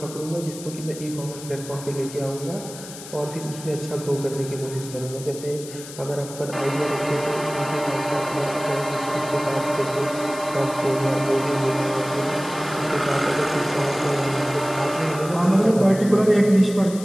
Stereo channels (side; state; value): left; noise; hiss, 14 dB below the sound